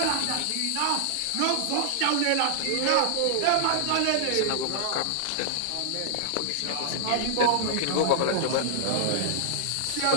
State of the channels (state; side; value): different; both; correlation -0.01